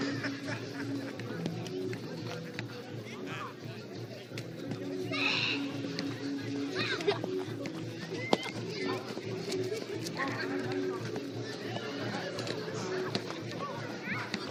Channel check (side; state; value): both; identical; correlation 1.00